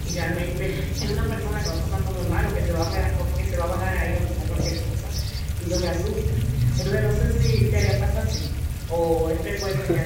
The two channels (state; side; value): identical; both; correlation 1.00